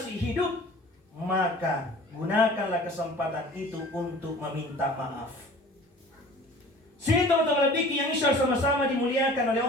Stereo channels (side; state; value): both; normal; correlation 0.45